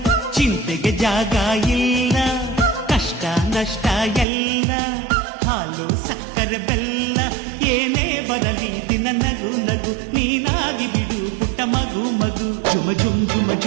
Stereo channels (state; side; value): drops out; left; at 4.2 s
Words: ಚಿಂತೆಗೆ ಜಾಗ ಇಲ್ಲ, ಕಷ್ಟ ನಷ್ಟ ಎಲ್ಲ ಹಾಲು ಸಕ್ಕರೆ ಬೆಲ್ಲ, ಏನೇ ಬರಲಿ ದಿನ ನಗು ನಗು ನೀನಾಗಿ ಬಿಡು ಪುಟ್ಟ ಮಗು ಮಗು. ಜುಮ ಜುಮ್ ಜುಮ